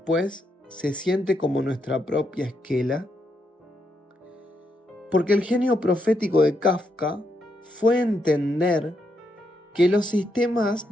se siente como nuestra propia esquela? Porque el genio profético de Kafka fue entender que los sistemas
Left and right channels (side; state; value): both; normal; correlation 0.80